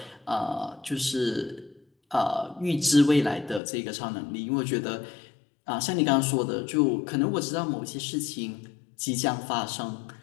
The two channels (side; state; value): right; drops out; at 3.6 s